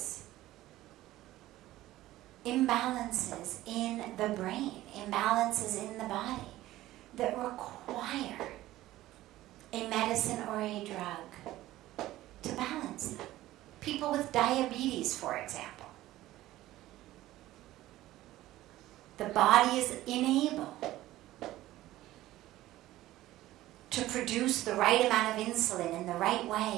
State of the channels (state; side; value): quieter; left; 15.7 dB